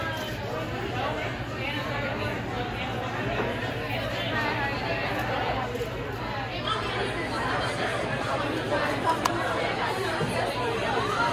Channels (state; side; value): identical; both; correlation 1.00